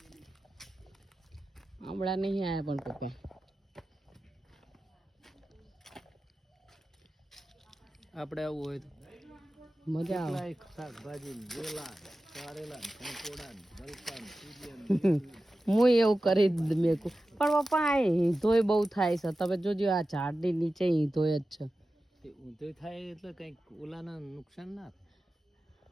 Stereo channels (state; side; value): normal; both; correlation 0.94